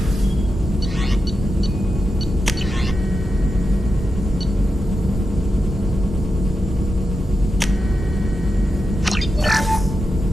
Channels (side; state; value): both; normal; correlation 0.88